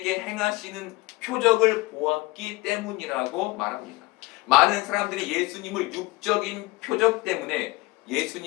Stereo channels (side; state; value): right; quieter; 21.3 dB